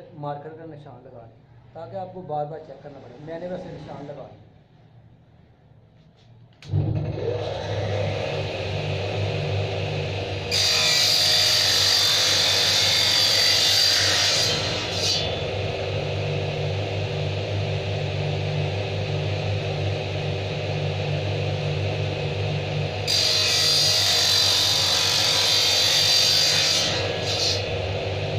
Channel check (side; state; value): both; identical; correlation 1.00